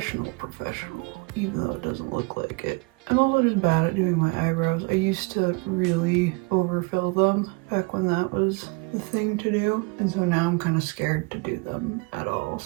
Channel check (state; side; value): quieter; left; 28.8 dB